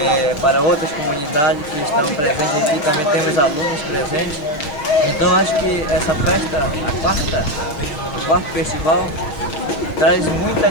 para outras comunidades que estão presentes aqui, também temos alunos presentes. Então acho que essa festa, o quarto festival, traz muita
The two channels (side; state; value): right; late; 6.6 ms